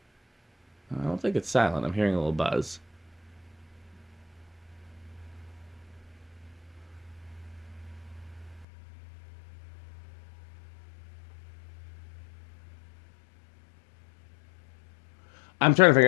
I don't think it's silent. I'm hearing a little buzz. I'm trying to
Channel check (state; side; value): drops out; right; at 8.7 s